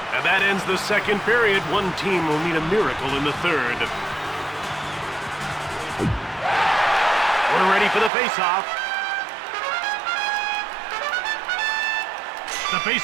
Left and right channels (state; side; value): drops out; left; at 8.1 s